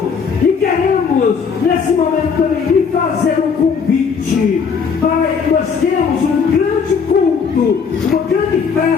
E queremos, nesse momento também, lhe fazer um convite. Pai, nós temos um grande culto, uma grande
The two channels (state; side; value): quieter; right; 6.0 dB